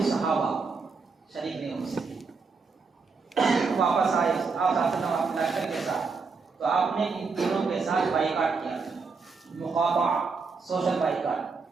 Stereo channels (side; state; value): left; quieter; 4.8 dB